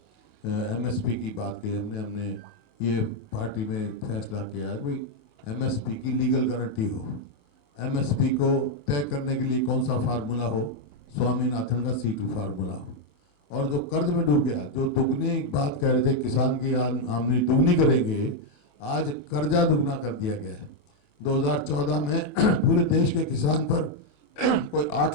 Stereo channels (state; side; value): late; right; 28 ms